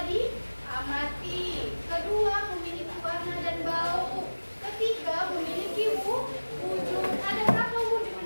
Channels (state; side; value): inverted; both; correlation -1.00